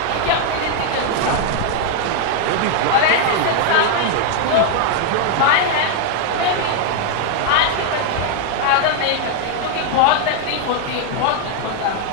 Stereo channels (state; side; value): different; both; correlation 0.00